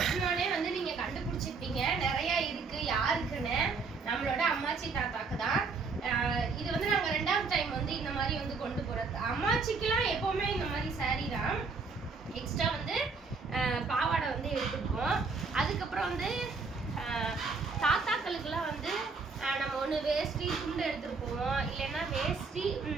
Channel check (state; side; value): quieter; left; 4.6 dB